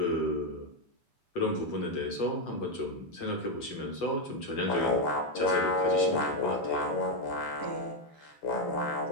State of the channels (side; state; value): right; late; 6.9 ms